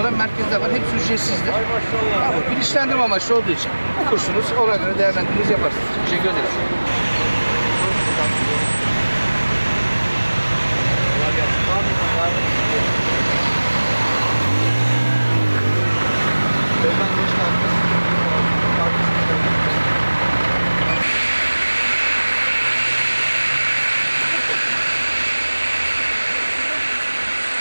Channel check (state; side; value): inverted; both; correlation -1.00